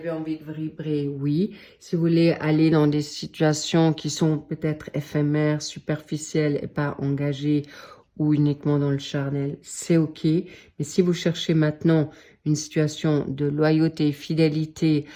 envie de vibrer, oui. Si vous voulez aller dans des situations qui sont peut-être éphémères, superficielles et pas engagées ou uniquement dans le charnel, c'est OK. Mais si vous cherchez maintenant une situation de loyauté, fidélité,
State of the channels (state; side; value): identical; both; correlation 1.00